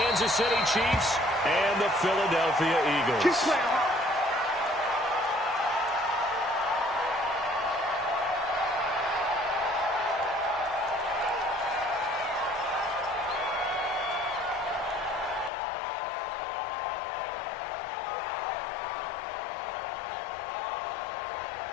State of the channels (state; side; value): drops out; right; at 15.5 s